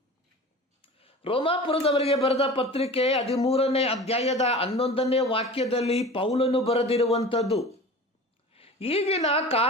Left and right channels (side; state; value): both; normal; correlation 0.37